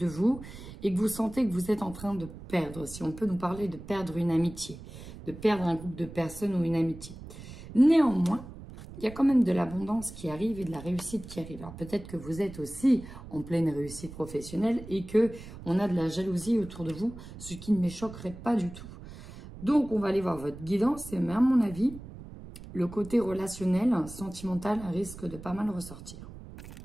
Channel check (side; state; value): right; noise; rumble, 14 dB below the sound